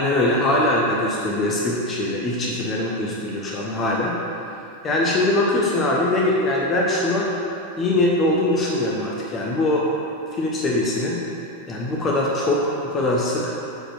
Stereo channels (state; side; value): normal; both; correlation 0.16